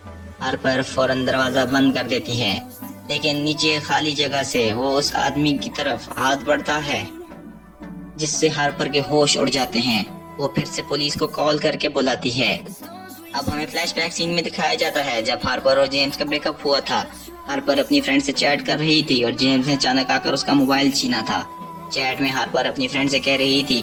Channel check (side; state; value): both; identical; correlation 1.00